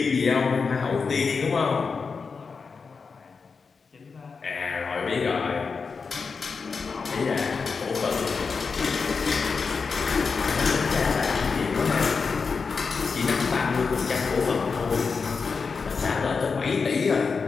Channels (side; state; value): right; quieter; 5.0 dB